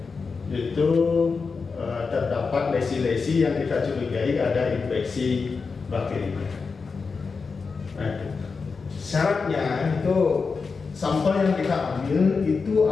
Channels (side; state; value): right; quieter; 4.8 dB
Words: itu terdapat lesi-lesi yang kita curigai ada infeksi bakteri. Nah, itu syaratnya itu sampel yang kita ambil itu